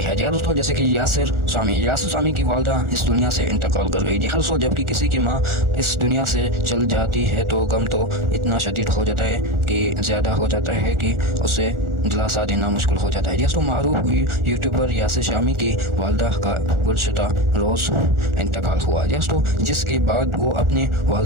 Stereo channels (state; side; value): late; left; 1.4 ms